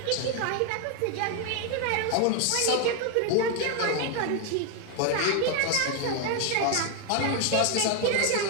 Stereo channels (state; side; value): different; both; correlation 0.01